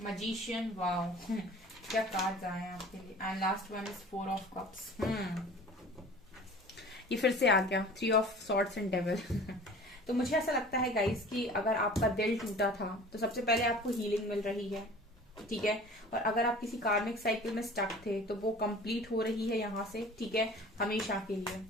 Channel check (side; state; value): both; normal; correlation 0.43